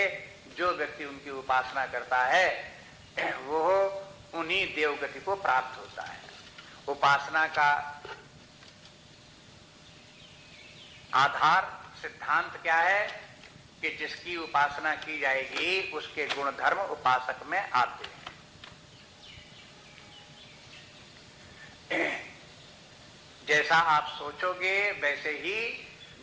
जो व्यक्ति उनकी उपासना करता है वो उन्हीं देवगति को प्राप्त होता है। उपासना का आधार सिद्धांत क्या है कि जिसकी उपासना की जाएगी उसके गुण धर्म उपासक में आते हैं। जैसा आप सोचोगे वैसे ही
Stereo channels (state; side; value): identical; both; correlation 1.00